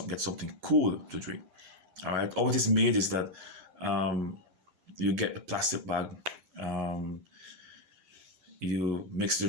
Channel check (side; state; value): left; late; 10 ms